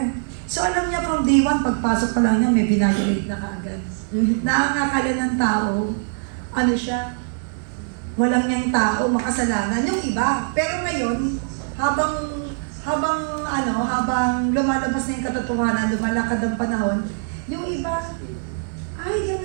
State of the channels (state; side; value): silent; left; digital silence